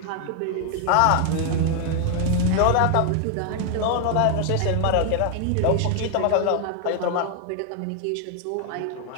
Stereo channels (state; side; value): different; both; correlation 0.00